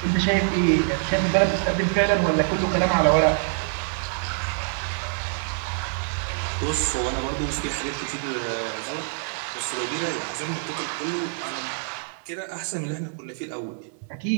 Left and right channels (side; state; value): left; silent; 61 dB below the other